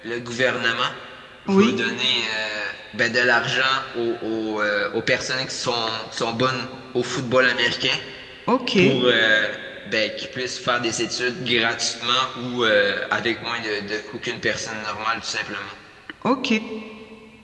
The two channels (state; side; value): identical; both; correlation 1.00